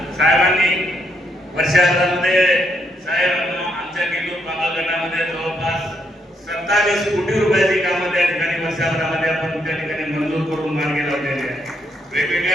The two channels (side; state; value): both; normal; correlation 0.76